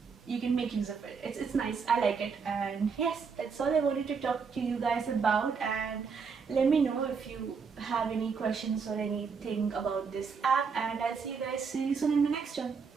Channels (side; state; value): left; quieter; 5.6 dB